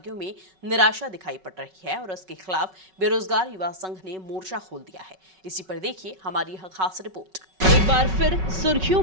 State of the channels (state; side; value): late; left; 5.3 ms